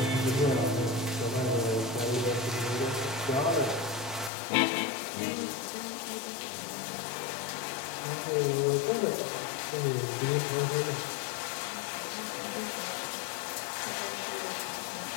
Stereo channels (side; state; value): right; drops out; at 4.3 s